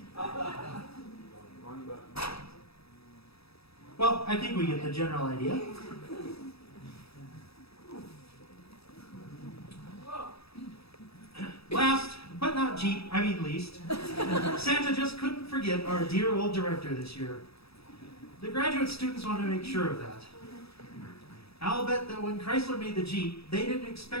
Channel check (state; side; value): late; right; 0.77 ms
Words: Well, I think we get the general idea. Last, but not least, Santa just couldn't forget our dear old director this year. The graduate students want to make sure of that. I'll bet that when Chrysler made the Jeep, they didn't